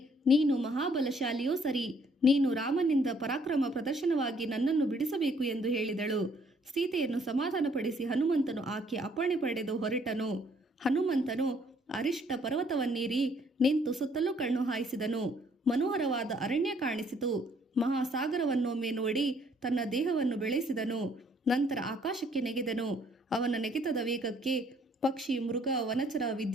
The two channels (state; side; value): normal; both; correlation 0.64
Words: ನೀನು ಮಹಾಬಲಶಾಲಿಯೋ ಸರಿ, ನೀನು ರಾಮನಿಂದ ಪರಾಕ್ರಮ ಪ್ರದರ್ಶನವಾಗಿ ನನ್ನನ್ನು ಬಿಡಿಸಬೇಕು ಎಂದು ಹೇಳಿದಳು. ಸೀತೆಯನ್ನು ಸಮಾಧಾನಪಡಿಸಿ ಹನುಮಂತನು ಆಕೆ ಅಪ್ಪಣೆ ಪಡೆದು ಹೊರಟನು. ಹನುಮಂತನು ಅರಿಷ್ಟ ಪರ್ವತವನ್ನೇರಿ ನಿಂತು ಸುತ್ತಲೂ ಕಣ್ಣು ಹಾಯಿಸಿದನು. ಮನೋಹರವಾದ ಅರಣ್ಯ ಕಾಣಿಸಿತು. ಮಹಾಸಾಗರವನ್ನೊಮ್ಮೆ ನೋಡಿ ತನ್ನ ದೇಹವನ್ನು ಬೆಳೆಸಿದನು. ನಂತರ ಆಕಾಶಕ್ಕೆ ನೆಗೆದನು. ಅವನ ನೆಗೆತದ ವೇಗಕ್ಕೆ ಪಕ್ಷಿ, ಮೃಗ, ವನಚರ,